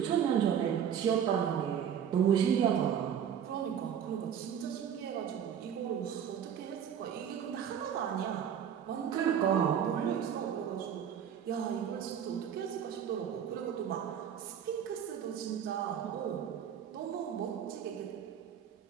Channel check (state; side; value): quieter; left; 8.6 dB